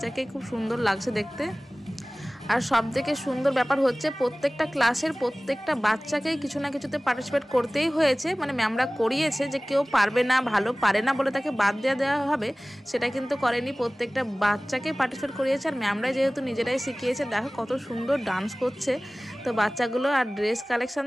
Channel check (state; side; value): normal; both; correlation 0.98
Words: খুব সুন্দর লাগছে দেখতে। আর সব থেকে সুন্দর ব্যাপার হচ্ছে প্রত্যেকটা ক্লাসের প্রত্যেকটা বাচ্চাকেই কিছু না কিছুতে পার্টিসিপেট করতেই হয়েছে, ম্যামরা করিয়েছে যে কেউ পারবে না, ভালো পারে না বলে তাকে বাদ দেওয়া হবে, সেটা কিন্তু করেনি। প্রত্যেকটা বাচ্চাকে পার্টিসিপেট করিয়েছে, আর ম্যামরাই যেহেতু নিজেরাই শিখিয়েছে, দেখো কত সুন্দর ডান্স করছে তো বাচ্চাগুলো। আর ড্রেস কালেকশন